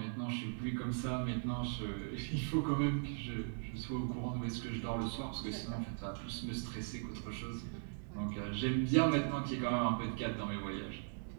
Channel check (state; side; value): silent; left; digital silence